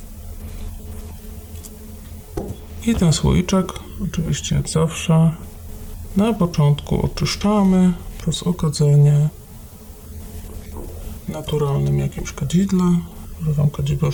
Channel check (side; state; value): both; identical; correlation 1.00